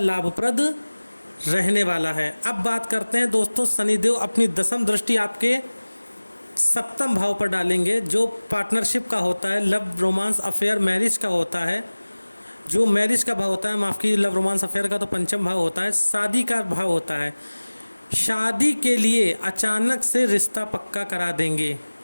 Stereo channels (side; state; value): both; inverted; correlation -1.00